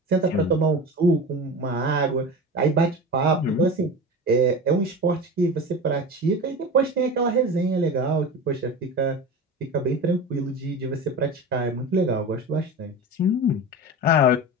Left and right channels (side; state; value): both; normal; correlation 0.29